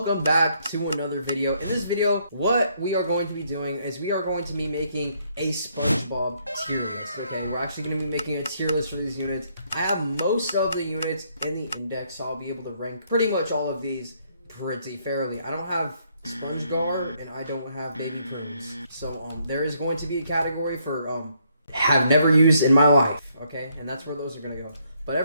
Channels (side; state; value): both; inverted; correlation -0.71